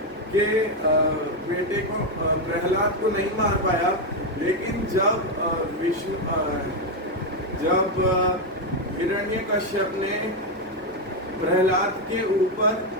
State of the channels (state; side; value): normal; both; correlation 0.05